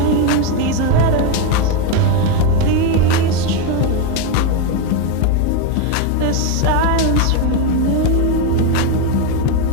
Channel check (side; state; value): both; different; correlation 0.03